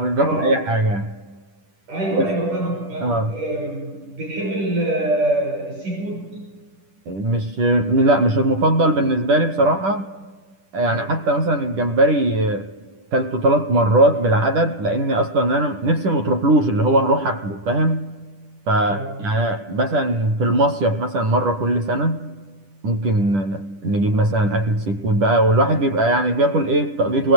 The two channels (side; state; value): left; late; 10 ms